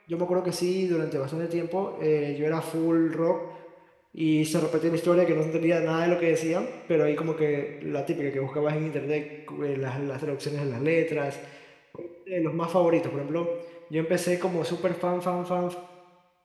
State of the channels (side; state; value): both; identical; correlation 1.00